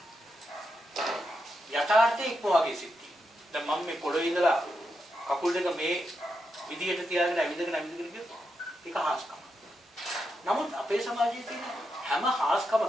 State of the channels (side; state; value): both; normal; correlation 0.85